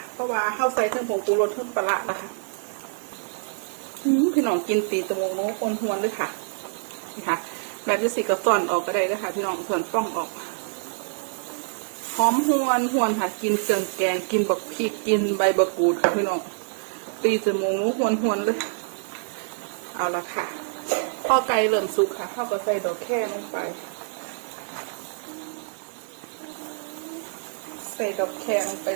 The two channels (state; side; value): silent; left; 61 dB below the other